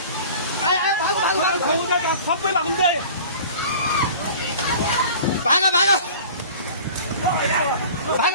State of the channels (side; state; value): both; inverted; correlation -0.42